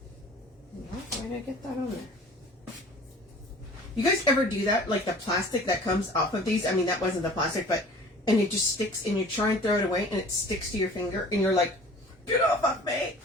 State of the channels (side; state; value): both; normal; correlation 0.46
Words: Why did I get that on there? You guys ever do that? Like the plastic that comes off of these? I mean, that wasn't the plastic, but, and it just sticks and you try and throw it away and it sticks to your finger and you're like, get off of me.